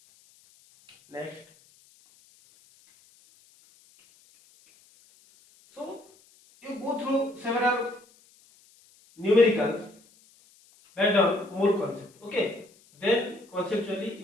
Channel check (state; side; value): noise; left; hiss, 29 dB below the sound